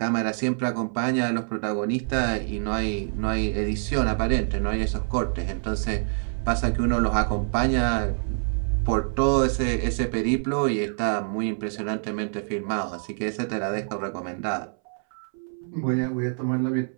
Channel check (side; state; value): left; silent; 61 dB below the other